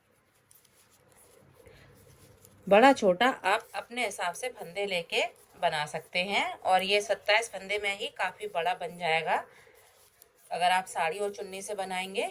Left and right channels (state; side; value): identical; both; correlation 1.00